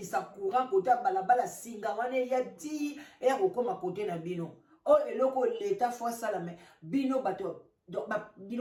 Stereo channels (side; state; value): both; identical; correlation 1.00